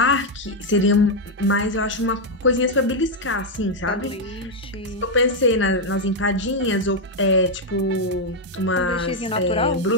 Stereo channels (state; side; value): normal; both; correlation 0.01